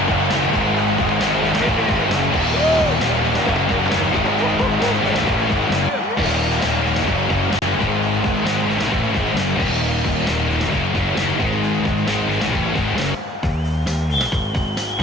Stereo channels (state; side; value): normal; both; correlation 0.56